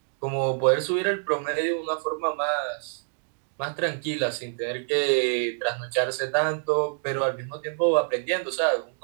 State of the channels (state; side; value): silent; left; digital silence